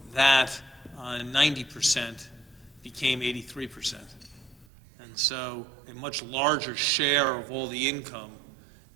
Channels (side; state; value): left; drops out; at 4.7 s